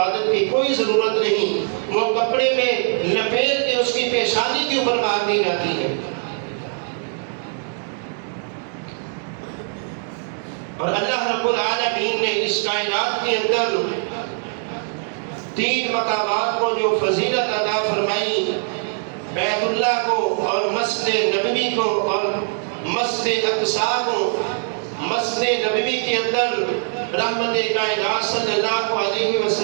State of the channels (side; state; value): left; silent; 57 dB below the other